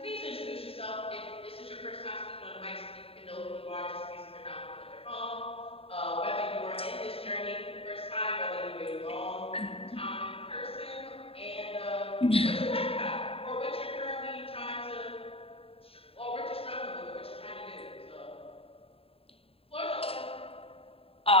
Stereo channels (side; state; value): right; late; 0.27 ms